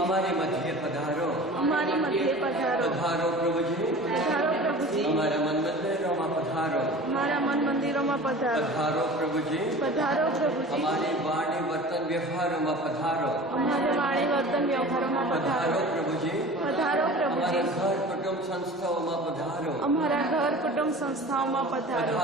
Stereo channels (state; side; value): normal; both; correlation 0.39